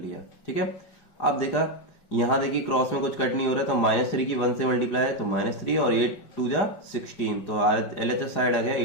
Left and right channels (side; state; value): right; late; 5.0 ms